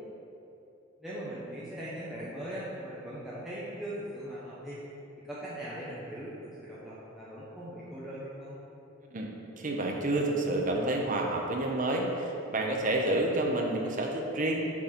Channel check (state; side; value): normal; both; correlation 0.24